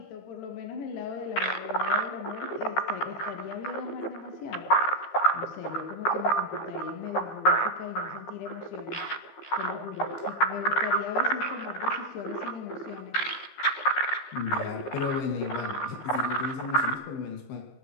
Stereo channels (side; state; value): right; late; 15 ms